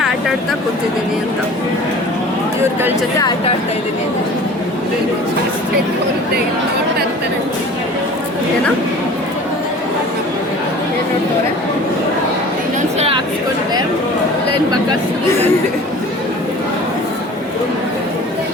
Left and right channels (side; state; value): both; normal; correlation 0.43